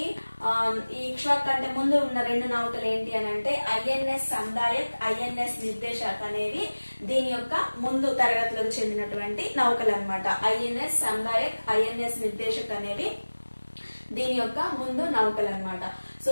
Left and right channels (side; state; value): both; inverted; correlation -1.00